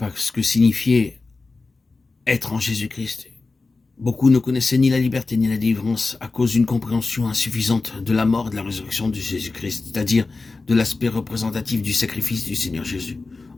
ce que signifiait être en Jésus-Christ. Beaucoup ne connaissaient ni la liberté ni la délivrance à cause d'une compréhension insuffisante de la mort et de la résurrection de Jésus-Christ, c'est-à-dire de l'aspect représentatif du sacrifice du Seigneur Jésus,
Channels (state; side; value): quieter; right; 3.7 dB